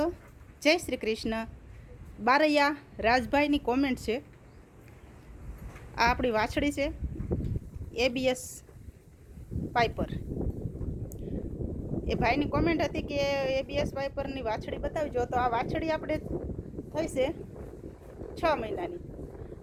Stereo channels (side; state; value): both; identical; correlation 1.00